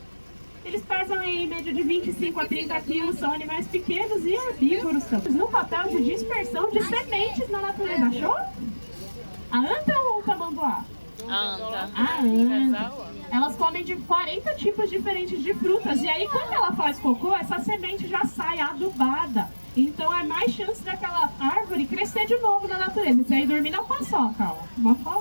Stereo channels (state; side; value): inverted; both; correlation -1.00